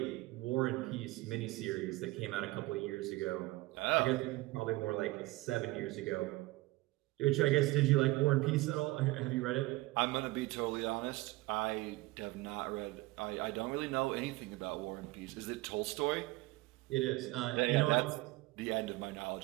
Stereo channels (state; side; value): quieter; left; 20.5 dB